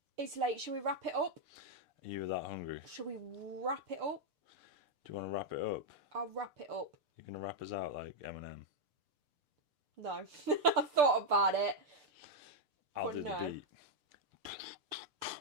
It's late. Shall we wrap it up? Are you that hungry? Shall we wrap it up? Do you want to wrap it up? I'll wrap it up. You're going to wrap us out like Eminem? No. I thought about it. I'll But do no. the beat.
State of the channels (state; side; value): late; left; 6.7 ms